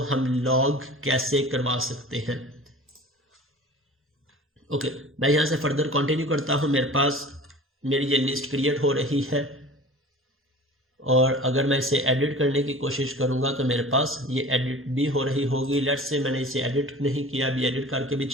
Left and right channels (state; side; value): normal; both; correlation 0.40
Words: हम लॉग कैसे करवा सकते हैं। ओके, मैं यहाँ से फर्दर कंटिन्यू करता हूँ। मेरे पास मेरी ये लिस्ट क्रिएट हो रही है और अगर मैं इसे एडिट करने की कोशिश करूँगा तो मेरे पास ये एडिट भी हो रही होगी। लेट्स से मैंने इसे एडिट नहीं किया, अभी एडिट करके भी